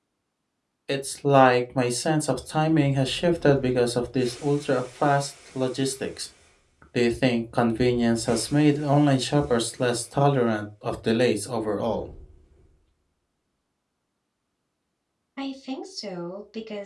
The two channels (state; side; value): identical; both; correlation 1.00